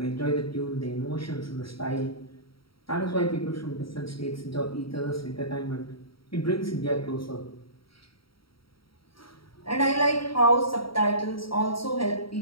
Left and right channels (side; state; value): right; late; 0.75 ms